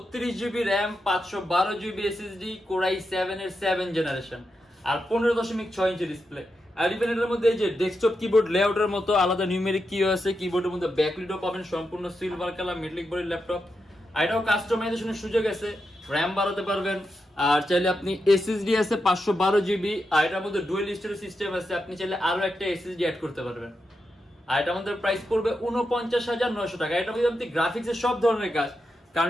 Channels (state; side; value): normal; both; correlation 0.87